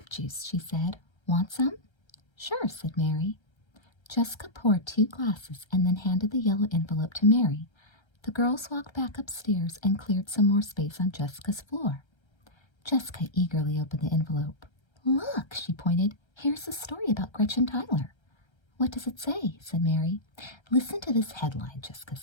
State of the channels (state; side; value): late; right; 1.3 ms